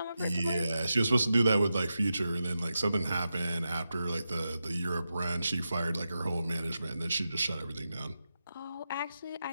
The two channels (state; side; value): inverted; both; correlation -0.90